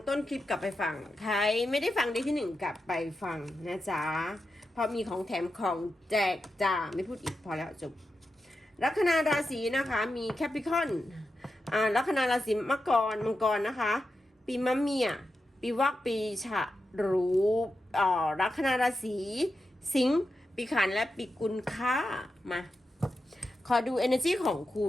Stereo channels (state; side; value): normal; both; correlation 0.89